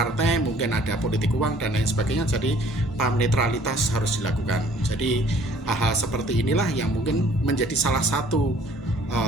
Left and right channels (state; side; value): normal; both; correlation 0.56